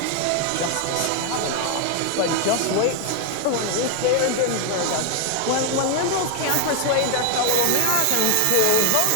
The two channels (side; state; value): both; different; correlation 0.01